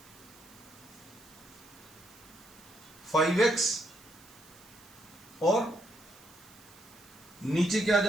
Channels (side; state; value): right; noise; hiss, 23 dB below the sound